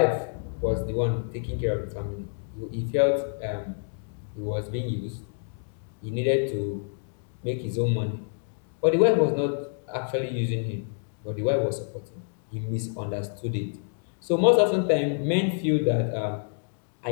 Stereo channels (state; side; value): silent; right; digital silence